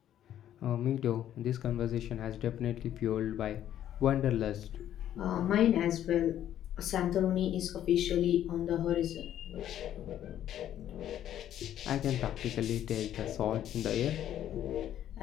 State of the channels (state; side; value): quieter; right; 11.2 dB